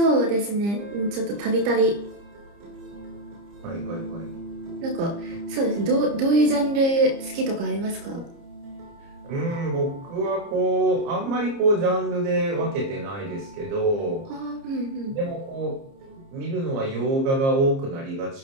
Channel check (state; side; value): late; left; 30 ms